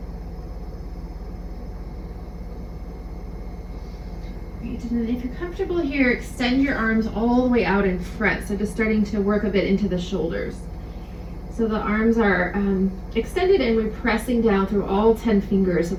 Great. And then if you're comfortable here, extend your arms all the way out in front. So just starting to work a bit into the shoulders. So the arms are extended and we're pressing down through all 10 fingers. So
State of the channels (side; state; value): both; identical; correlation 1.00